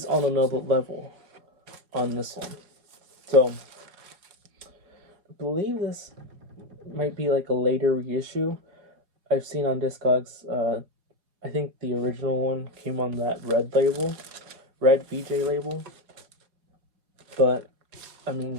on another level on this one. So I believe this might be like a later reissue. I've seen on Discogs, I think the original one came on that red VJ label. But I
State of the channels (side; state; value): left; late; 4.8 ms